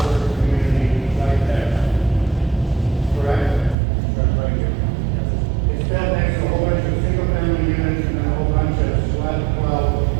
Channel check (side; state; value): left; drops out; at 3.8 s